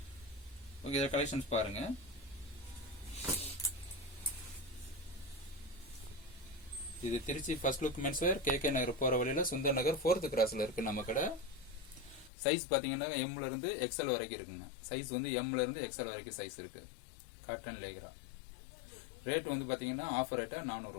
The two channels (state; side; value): drops out; right; at 12.3 s